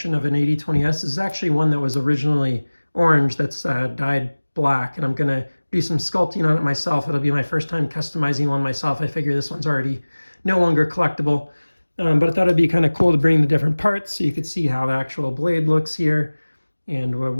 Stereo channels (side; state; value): both; inverted; correlation -1.00